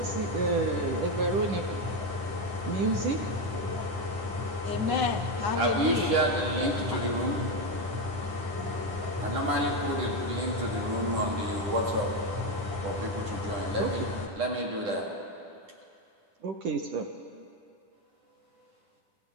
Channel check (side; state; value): left; late; 9.7 ms